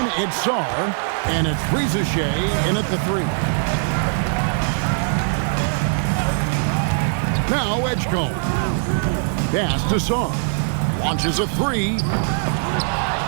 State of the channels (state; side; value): silent; left; digital silence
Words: it's Sar. And it's Rizichet in at the 3. Now Edgecombe. Pass to Sar. Launches a 3.